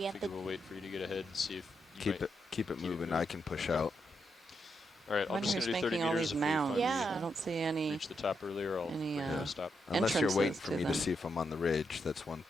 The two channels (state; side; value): normal; both; correlation 0.82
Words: figure we'll wait for you to get ahead and see if you Keep might. it moving. I can push out. All right, I'm Wonder just who's going to do 30 making all meters. these If we mounds. finally Yeah. I don't see any. reach the top earlier, I'll any, bring you to uh, a stop. Unless you're waiting entrances for to me them. to see if I'm on the ridge, that's one